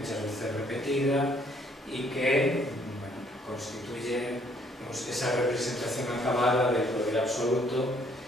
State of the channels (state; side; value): normal; both; correlation 0.64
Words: veces repetida, y que, bueno, constituye, digamos, esa representación acabada del poder absoluto,